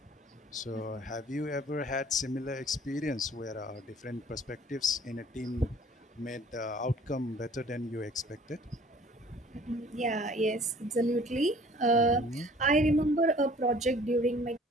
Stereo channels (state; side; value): normal; both; correlation 0.52